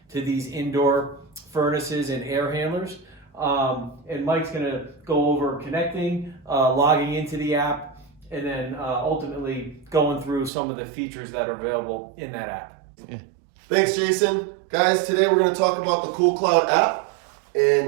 to these indoor furnaces and air handlers. And Mike's going to go over connecting, logging into the app, and then ultimately going through some of the features that are available in that app. Yeah. Thanks, Jason. Guys, today we're going to talk about the CoolCloud app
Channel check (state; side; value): drops out; left; at 10.5 s